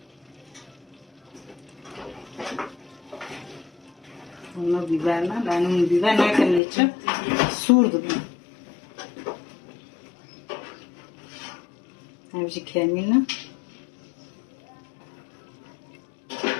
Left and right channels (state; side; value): drops out; right; at 6.6 s